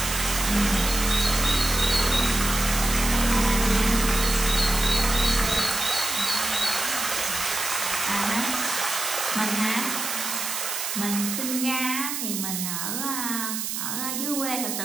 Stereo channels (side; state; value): right; noise; hiss, 3 dB below the sound